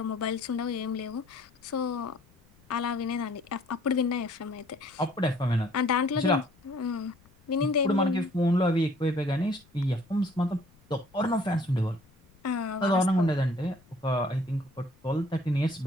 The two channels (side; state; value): left; noise; rumble, 30 dB below the sound